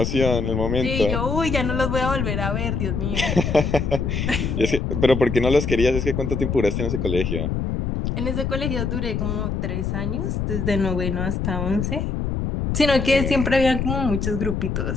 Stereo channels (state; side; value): noise; left; rumble, 1 dB below the sound